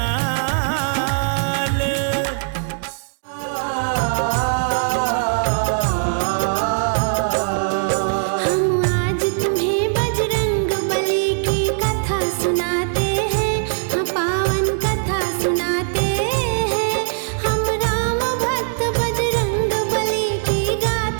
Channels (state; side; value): silent; left; digital silence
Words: हम आज तुम्हें बजरंग बली की कथा सुनाते हैं, हाँ पावन कथा सुनाते हैं। हम राम भक्त बजरंग बली की